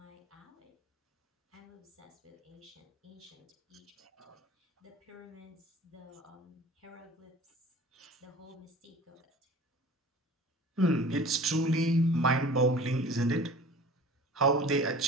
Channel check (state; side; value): normal; both; correlation 0.42